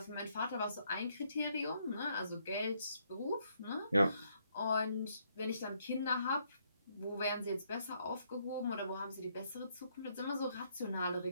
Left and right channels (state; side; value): inverted; both; correlation -0.72